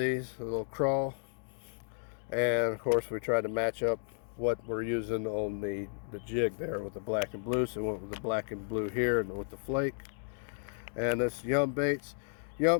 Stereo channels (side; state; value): right; silent; digital silence